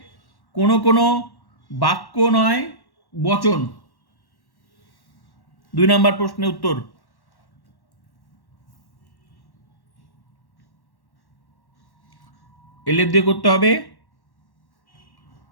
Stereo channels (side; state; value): right; late; 1.1 ms